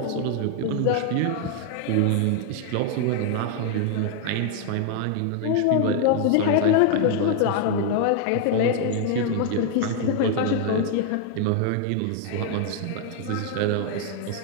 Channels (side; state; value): both; different; correlation 0.00